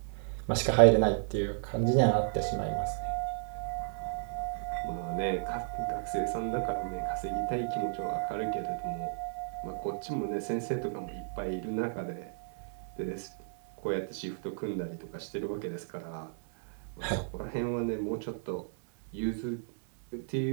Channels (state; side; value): silent; left; 56 dB below the other